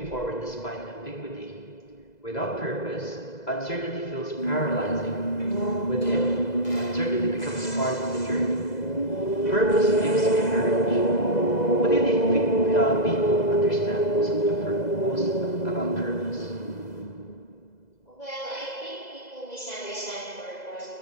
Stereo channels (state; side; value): late; right; 2.0 ms